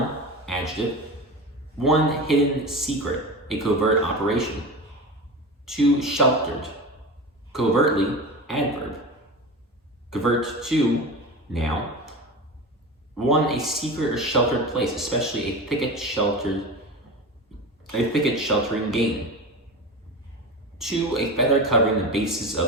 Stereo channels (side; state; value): both; normal; correlation 0.28